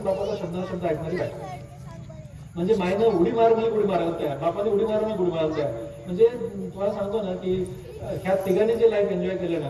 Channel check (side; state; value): both; identical; correlation 1.00